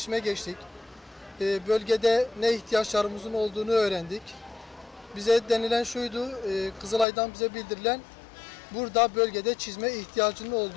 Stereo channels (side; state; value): right; drops out; at 7.1 s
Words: geçtik. Bölgede ne ihtiyaçlarımızın olduğunu öğrendik. Bize denilen şuydu, Kızılay'dan bize bildirilen burada bölgede çizme ihtiyacının